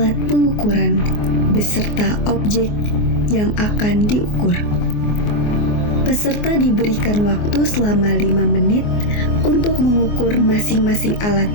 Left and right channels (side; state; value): right; late; 24 ms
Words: pengukuran beserta objek yang akan diukur. Peserta diberikan waktu selama 5 menit untuk mengukur masing-masing alat